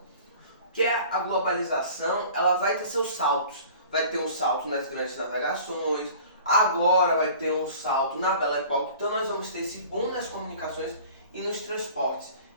Que a globalização, ela vai ter seus saltos. Vai ter um salto nas grandes navegações, agora vai ter um salto na Belle Époque. Então nós vamos ter esse boom nas comunicações e nos transportes.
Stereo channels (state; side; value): inverted; both; correlation -0.45